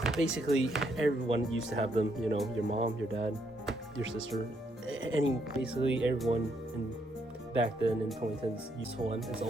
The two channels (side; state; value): both; normal; correlation 0.74